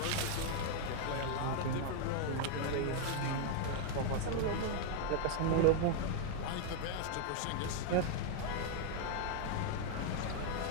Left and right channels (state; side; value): different; both; correlation 0.00